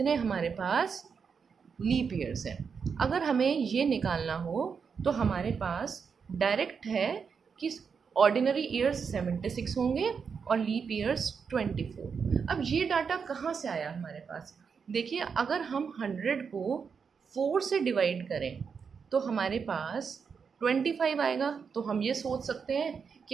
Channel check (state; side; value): quieter; left; 6.1 dB